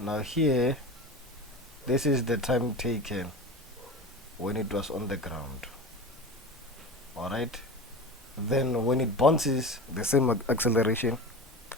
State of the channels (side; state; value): both; normal; correlation 0.30